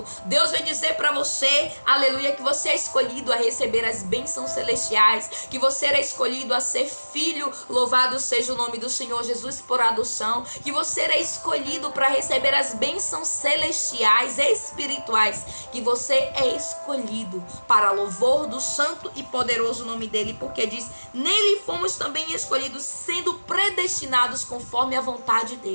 Deus vai dizer para você, aleluia, que você é escolhido a receber as bênçãos celestiais, que você é escolhido a ser filho, louvado seja o nome do Senhor Jesus por adoção, que você é escolhido para receber as bênçãos celestiais, espirituais, que você é escolhido para louvor do santo e poderoso nome dele, porque diz, nele fomos também escolhidos, sendo predestinados conforme a vontade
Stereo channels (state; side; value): inverted; both; correlation -1.00